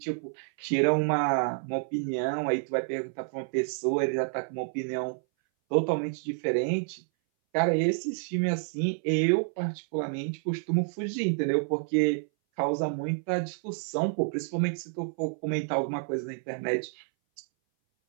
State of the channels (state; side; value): silent; left; 58 dB below the other